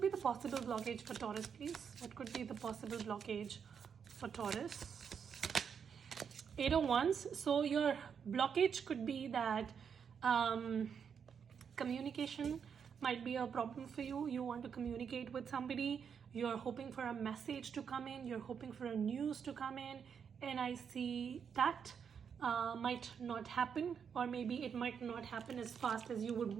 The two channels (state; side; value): quieter; left; 7.0 dB